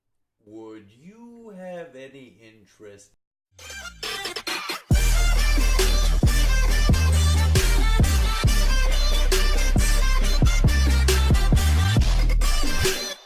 Would you have any interest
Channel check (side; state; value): both; identical; correlation 1.00